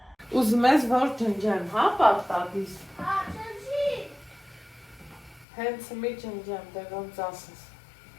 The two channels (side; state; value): right; drops out; at 5.5 s